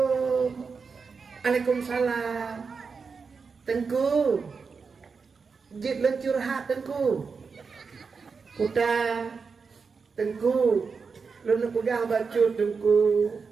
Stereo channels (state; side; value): quieter; left; 5.2 dB